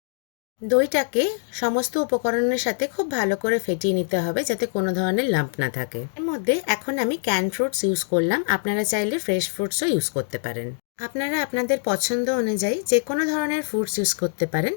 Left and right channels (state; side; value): silent; right; digital silence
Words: দইটাকে সমস্ত উপকরণের সাথে খুব ভালো করে ফেটিয়ে নিতে হবে যাতে কোনো ধরনের লাম্প না থাকে। এর মধ্যে এখন আমি ক্যান ফ্রুটস ইউজ করলাম, আপনারা চাইলে ফ্রেশ ফ্রুটসও ইউজ করতে পারেন। আপনারা আপনাদের পছন্দ অনুযায়ী যে কোনো ধরনের ফ্রুটস ইউজ করতে পারেন।